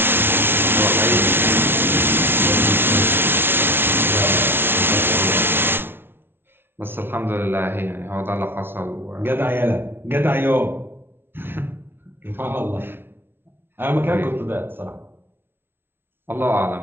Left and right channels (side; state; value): left; late; 0.11 ms